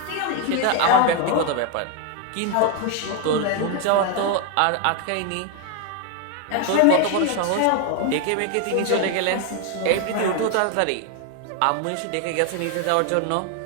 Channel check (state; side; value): different; both; correlation 0.01